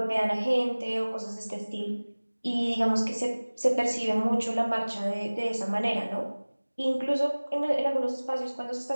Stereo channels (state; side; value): inverted; both; correlation -1.00